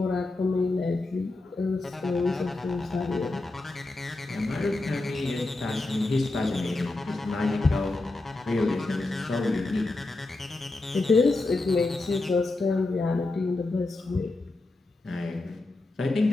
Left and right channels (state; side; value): quieter; right; 3.0 dB